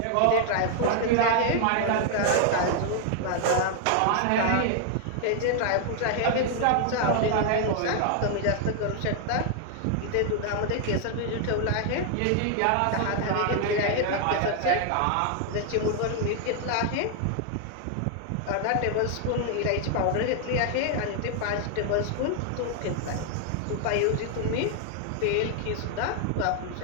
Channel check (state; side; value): different; both; correlation 0.00